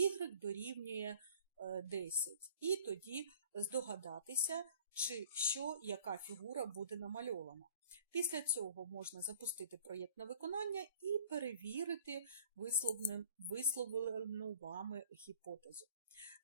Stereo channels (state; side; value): inverted; both; correlation -0.50